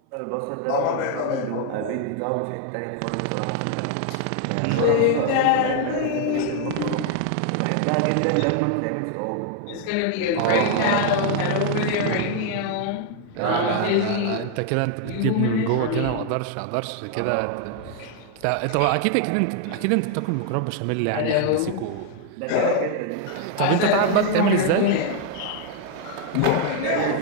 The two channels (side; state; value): both; different; correlation 0.00